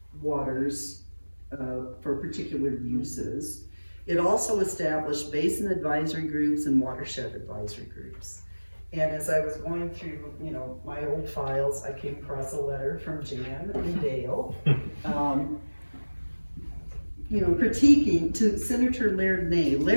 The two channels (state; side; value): inverted; both; correlation -1.00